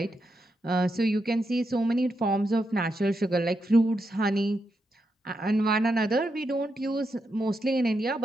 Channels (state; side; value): normal; both; correlation 0.84